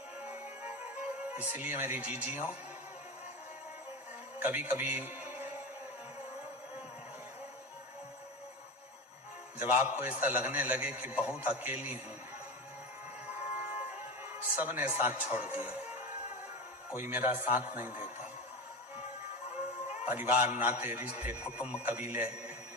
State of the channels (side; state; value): both; normal; correlation 0.23